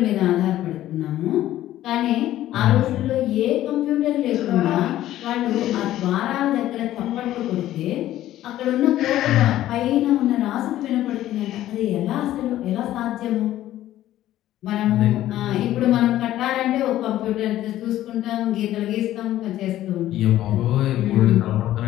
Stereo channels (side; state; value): right; quieter; 13.6 dB